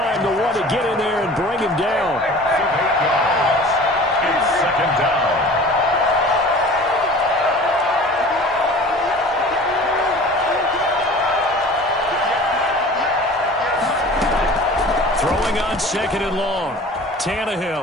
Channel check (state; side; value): normal; both; correlation 0.42